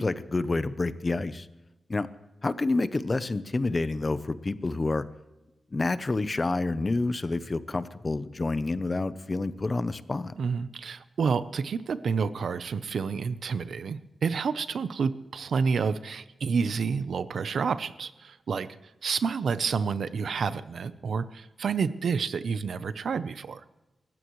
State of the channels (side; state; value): both; normal; correlation 0.88